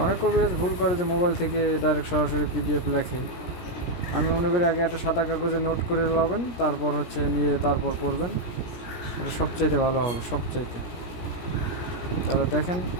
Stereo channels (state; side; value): late; right; 17 ms